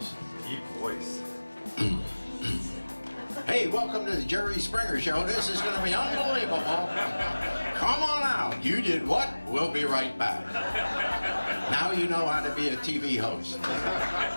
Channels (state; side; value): inverted; both; correlation -1.00